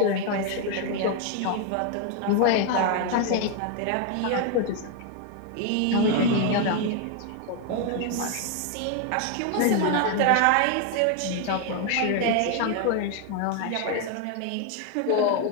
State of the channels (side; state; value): both; different; correlation 0.01